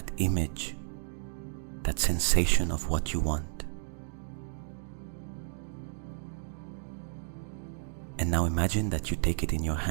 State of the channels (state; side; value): silent; left; digital silence